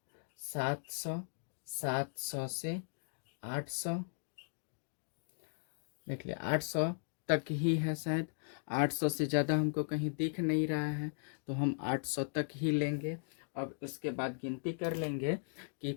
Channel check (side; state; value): right; silent; digital silence